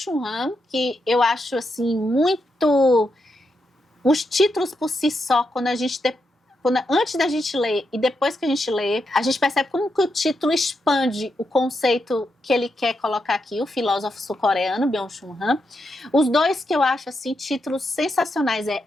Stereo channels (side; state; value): both; normal; correlation 0.84